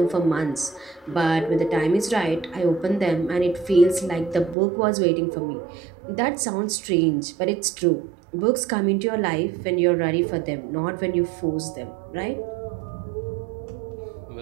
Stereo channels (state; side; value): drops out; left; at 4.5 s